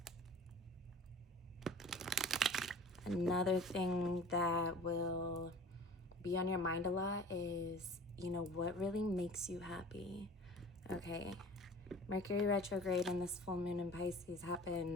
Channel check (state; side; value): normal; both; correlation 0.43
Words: thing that will be on your mind a lot is, what really makes you happy, okay? Mercury retrograde and this full moon in Pisces